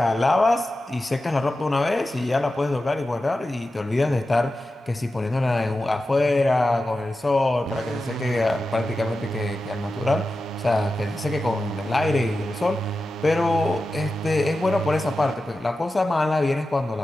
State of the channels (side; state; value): both; normal; correlation 0.92